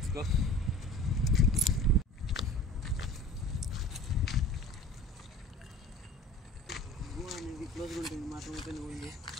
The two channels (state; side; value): normal; both; correlation 0.42